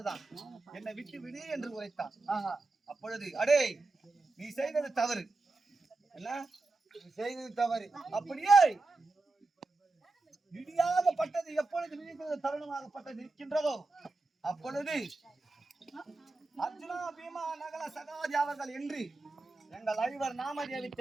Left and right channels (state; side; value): quieter; left; 3.4 dB